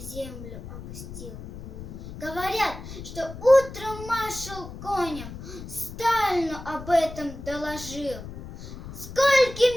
опустил. Говорят, что утром маршал Конев Сталину об этом доложил.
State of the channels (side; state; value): left; noise; rumble, 12 dB below the sound